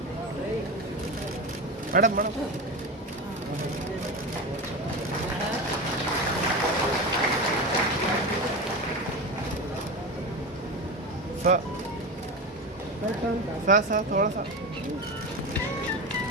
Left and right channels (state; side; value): normal; both; correlation 0.23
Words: मैडम मैडम सा थोड़ा सा